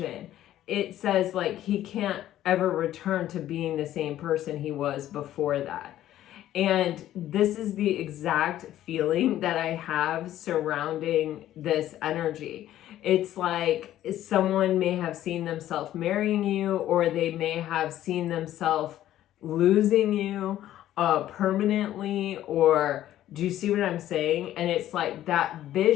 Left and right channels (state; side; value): quieter; right; 12.9 dB